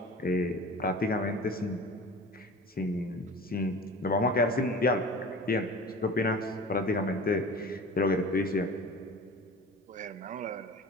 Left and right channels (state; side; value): normal; both; correlation 0.38